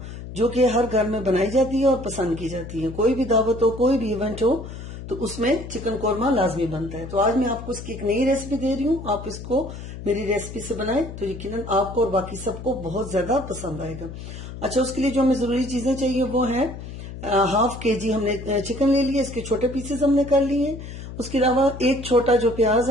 जो कि हर घर में बनाई जाती है और पसंद की जाती है। कोई भी दावत हो, कोई भी इवेंट हो, तो उसमें चिकन कोरमा लाजमी बनता है। तो आज मैं आपको इसकी एक नई रेसिपी दे रही हूँ। आप इसको मेरी रेसिपी से बनाएं तो यकीनन आपको और बाकी सबको बहुत ज्यादा पसंद आएगा। अच्छा, उसके लिए जो हमें जरूरी चीजें चाहिए वो है हाफ केजी हमने चिकन ले लिया, इसके छोटे पीसेस हमने कर लिए। उसके अलावा एक छोटा जो प्याज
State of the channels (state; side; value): noise; left; hum, 11 dB below the sound